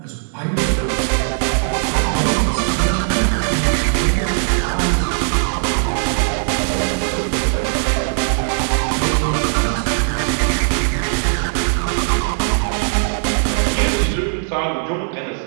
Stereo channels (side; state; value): left; silent; 67 dB below the other